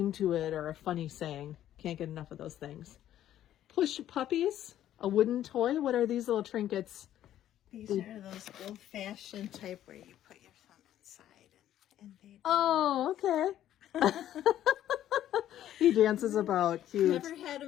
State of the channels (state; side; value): quieter; right; 11.9 dB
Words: to it or a funny saying. Can't get enough of those things. Push puppies, a wooden toy. What are these little trinkets? These are those old-fashioned type where you put your thumb inside and they. Oh, okay. He dances about. Cute. Never had